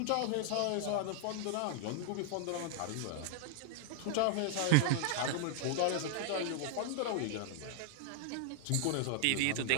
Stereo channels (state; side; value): different; both; correlation 0.00